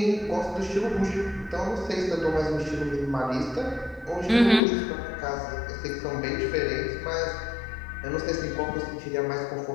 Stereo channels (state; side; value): drops out; right; at 4.6 s